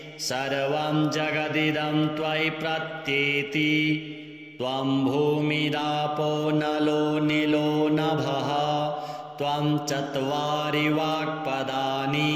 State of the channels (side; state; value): both; identical; correlation 1.00